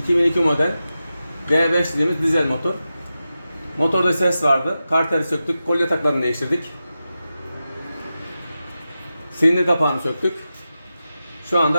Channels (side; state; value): both; inverted; correlation -0.92